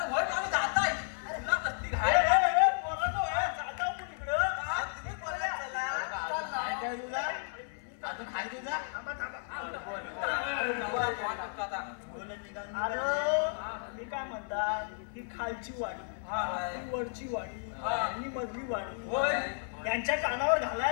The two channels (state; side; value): silent; right; 56 dB below the other